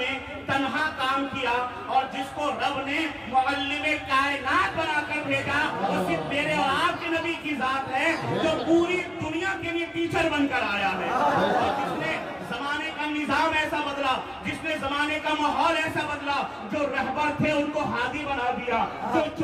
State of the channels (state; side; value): identical; both; correlation 1.00